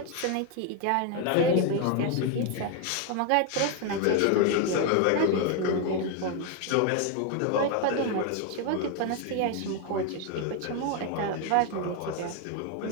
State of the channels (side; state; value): both; different; correlation 0.01